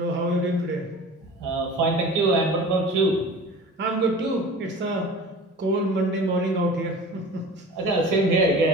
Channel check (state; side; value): normal; both; correlation 0.39